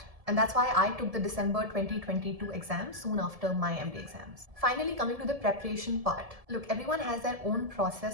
And that's why I took the December 2022 exam soon after my MD exams. Finally, coming to the preparation part. Look, everyone has their own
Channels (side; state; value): left; late; 1.7 ms